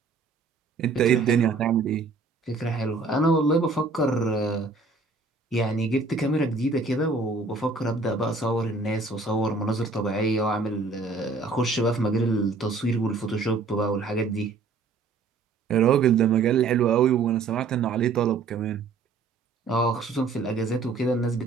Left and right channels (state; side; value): quieter; left; 4.1 dB